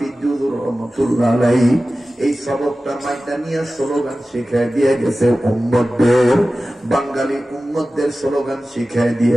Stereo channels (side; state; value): both; normal; correlation 0.95